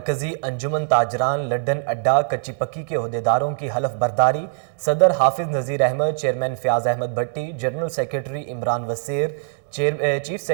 अंजुमन ताजरान लड्डन अड्डा कच्ची पक्की के ओहदेदारों की हलफ बर्दारी। सदर Hafiz Nazir Ahmed, chairman Fayyaz Ahmed Bhatti, general secretary Imran Wasir, chief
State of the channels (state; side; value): silent; left; digital silence